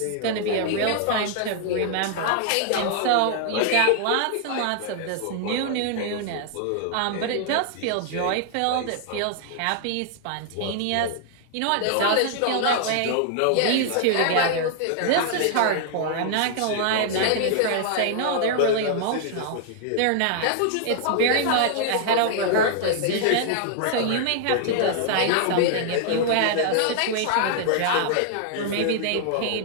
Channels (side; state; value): both; different; correlation 0.00